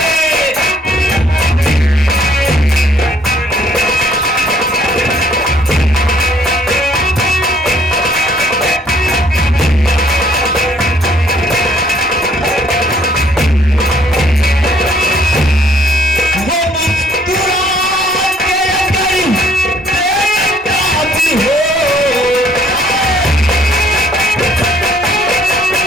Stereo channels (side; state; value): both; normal; correlation 0.63